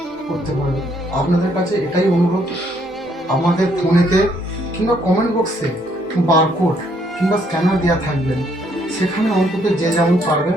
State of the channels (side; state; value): both; normal; correlation 0.69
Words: করতে পারবে। আপনাদের কাছে এটাই অনুরোধ, আমাদের ফোনেতে কিংবা কমেন্ট বক্সে বারকোড কিংবা স্ক্যানার দেওয়া থাকবেন, সেখানে অন্তত যে যেমন পারবেন